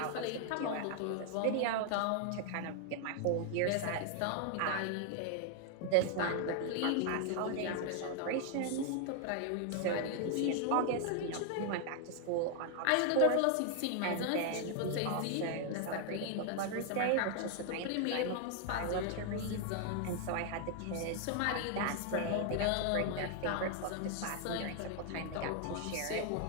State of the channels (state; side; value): different; both; correlation 0.00